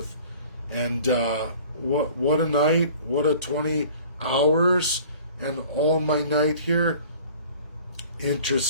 And what a night, what a 20 hours, and all my night here.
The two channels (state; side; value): inverted; both; correlation -0.48